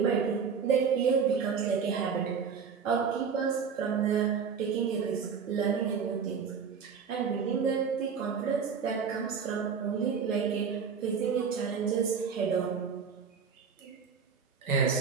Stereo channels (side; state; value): left; quieter; 6.3 dB